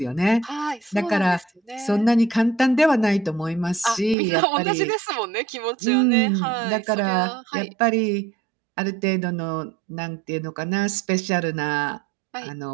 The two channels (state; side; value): drops out; left; at 4.2 s